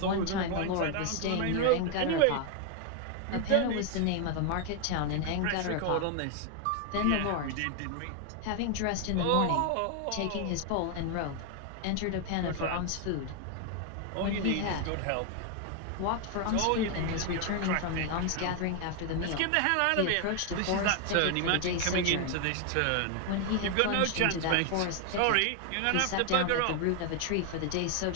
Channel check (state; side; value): different; both; correlation 0.01